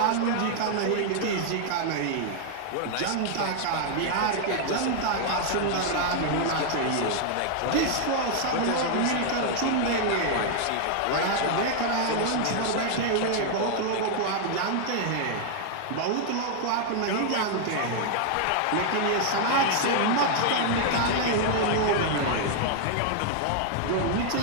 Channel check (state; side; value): different; both; correlation 0.00